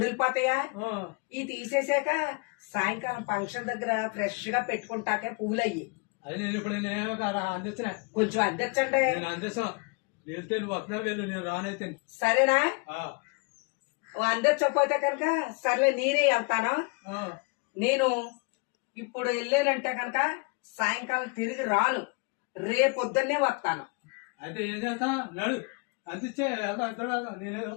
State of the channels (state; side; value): quieter; right; 32.8 dB